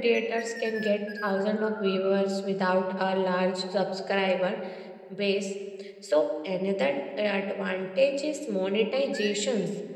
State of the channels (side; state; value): both; identical; correlation 1.00